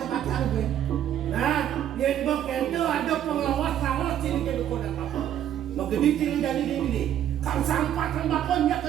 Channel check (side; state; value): left; quieter; 10.7 dB